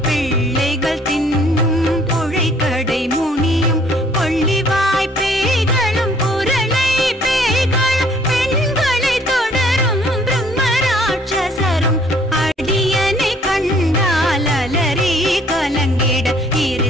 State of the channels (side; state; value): both; normal; correlation 0.60